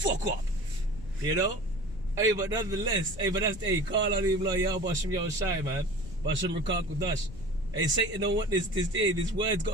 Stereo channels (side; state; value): left; noise; rumble, 14 dB below the sound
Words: up. Hey, but nonetheless, call on him like Yahweh Ba'Hashem Yahweh Shai, man. Ba'Hashem Ruach HaKodesh. Hey, Satan don't want this word's